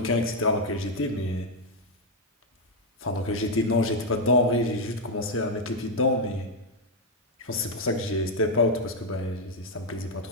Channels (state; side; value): normal; both; correlation 0.02